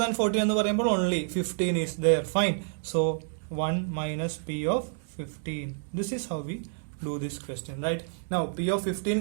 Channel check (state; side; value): silent; left; digital silence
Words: than 14 എന്ന് പറയുമ്പോൾ only 15 is there. Fine. So 1 minus p of 15. This is how we do this question, right? Now p of 15